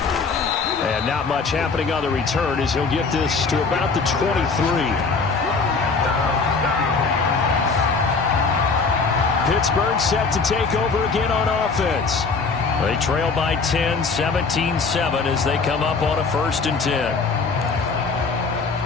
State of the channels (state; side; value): quieter; right; 4.6 dB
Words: And not much happening on the return as he'll get this to about the 23. Pittsburgh set to take over again on offense. They trail by 10, 17-7 as they come up on a 1st and 10.